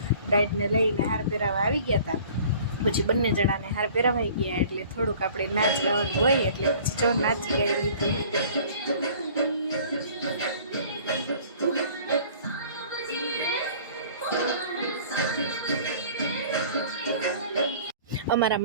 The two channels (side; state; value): both; inverted; correlation -0.49